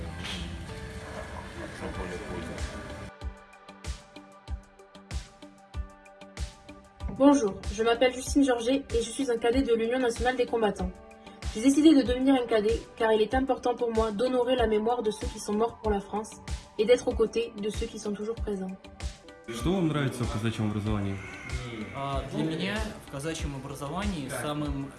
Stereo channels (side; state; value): both; identical; correlation 1.00